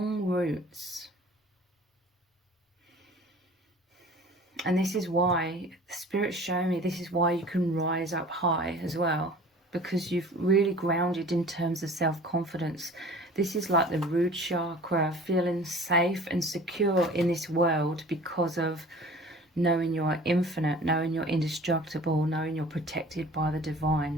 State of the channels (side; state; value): both; normal; correlation 0.45